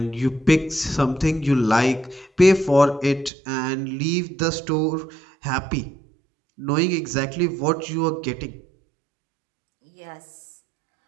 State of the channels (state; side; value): drops out; left; at 3.3 s